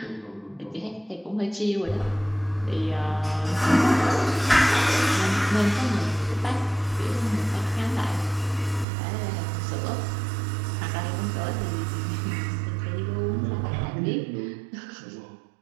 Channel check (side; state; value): left; drops out; at 8.8 s